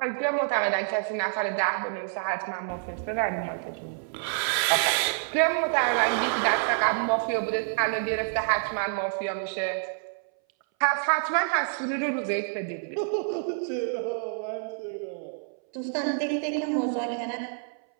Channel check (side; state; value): left; silent; 60 dB below the other